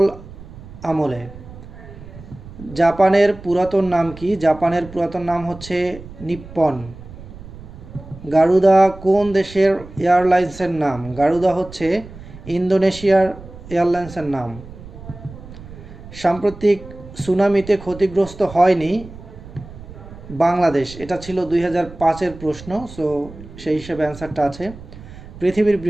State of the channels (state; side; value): noise; right; rumble, 16 dB below the sound